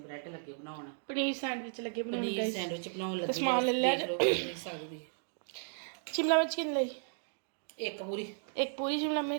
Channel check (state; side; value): silent; left; 55 dB below the other